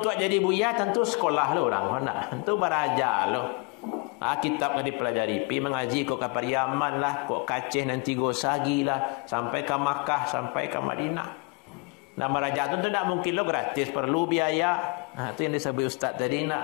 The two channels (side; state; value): right; quieter; 29.5 dB